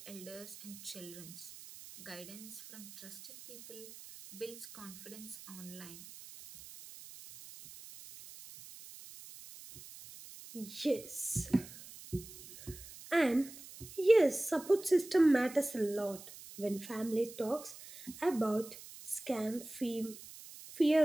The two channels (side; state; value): right; noise; hiss, 16 dB below the sound